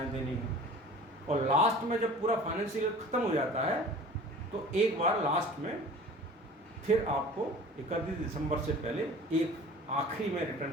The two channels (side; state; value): both; normal; correlation 0.42